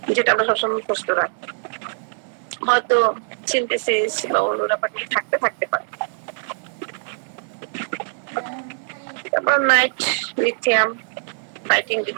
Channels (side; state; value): left; silent; digital silence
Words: যেটা আমরা সবসময় মুখস্থ রাখি, হয়তো সিনথেসিস বা অন্য ব্যাপারটা থাকতে পারে। তারপর নাইট লিথিয়াম, লাইটিং